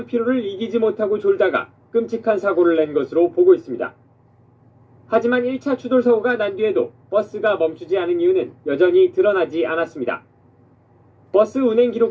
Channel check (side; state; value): both; identical; correlation 1.00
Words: 피로를 이기지 못하고 졸다가 끔찍한 사고를 낸 것으로 보고 있습니다. 하지만 1차 추돌 사고가 난 뒤에도 버스가 멈추지 않은 이유는 여전히 드러나지 않았습니다. 버스 운행